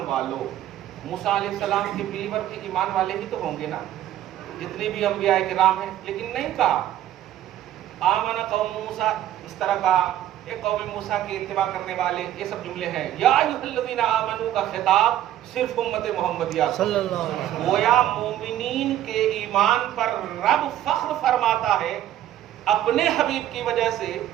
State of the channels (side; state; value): left; quieter; 12.3 dB